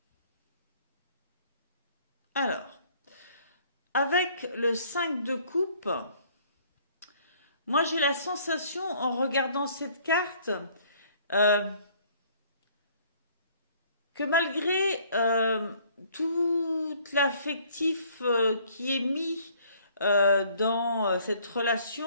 Alors, avec le 5 de coupe, moi j'ai la sensation en regardant cette carte que malgré tout l'affectif qui est mis dans cette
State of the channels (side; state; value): both; inverted; correlation -0.59